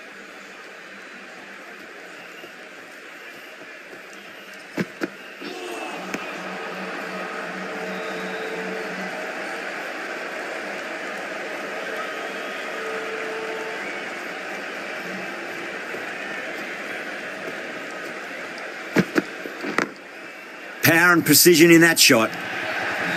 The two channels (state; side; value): identical; both; correlation 1.00